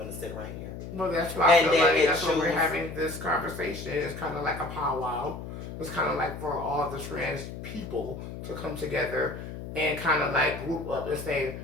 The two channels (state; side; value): noise; left; hum, 9 dB below the sound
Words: to sit right here. Well, that's why I feel like that's why we're having this conversation. It's kind of like a powwow. It's kind of like for all the trans people to come together and kind of like group up and say,